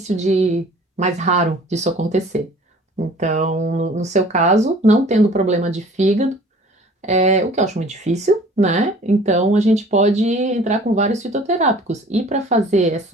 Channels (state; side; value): normal; both; correlation 0.49